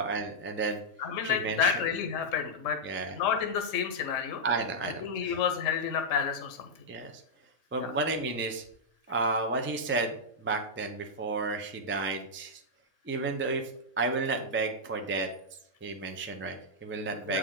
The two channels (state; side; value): normal; both; correlation -0.07